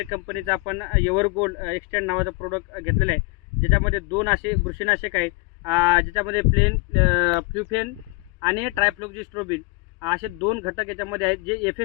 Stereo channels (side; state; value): right; quieter; 28.2 dB